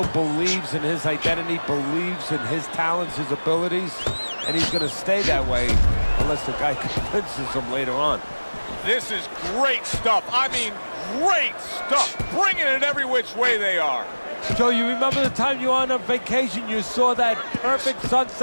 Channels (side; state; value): both; inverted; correlation -1.00